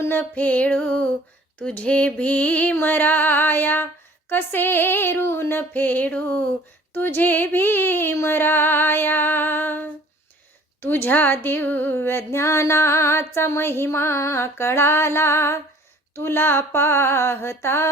फेडू तुझे भीमराया, कसे ऋण फेडू तुझे भीमराया. तुझ्या दिव्य ज्ञानाचा महिमा कळाला, तुला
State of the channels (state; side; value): normal; both; correlation 0.52